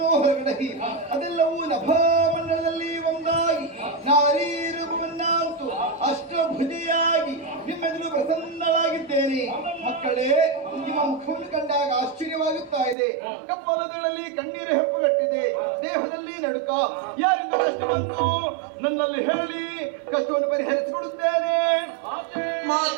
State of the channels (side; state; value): left; drops out; at 13.0 s